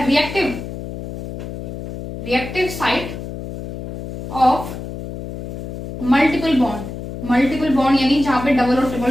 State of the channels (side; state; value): left; noise; hum, 8 dB below the sound